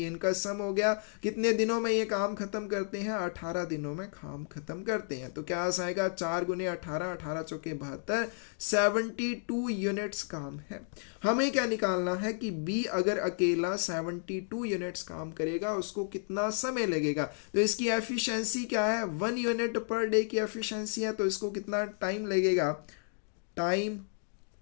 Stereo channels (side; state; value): right; silent; 56 dB below the other